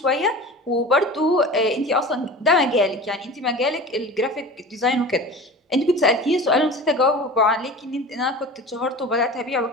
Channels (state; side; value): normal; both; correlation 0.36